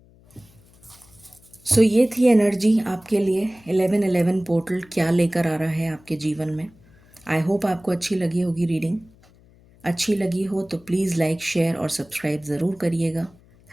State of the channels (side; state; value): left; noise; hum, 28 dB below the sound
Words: सो ये थी एनर्जी आपके लिए। 1111 पोर्टल क्या लेकर आ रहा है आपके जीवन में। आई होप आपको अच्छी लगी होगी रीडिंग। अच्छी लगी हो तो प्लीज़ लाइक, शेयर और सब्सक्राइब ज़रूर करिएगा।